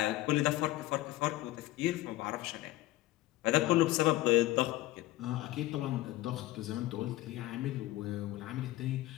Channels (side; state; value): right; quieter; 16.9 dB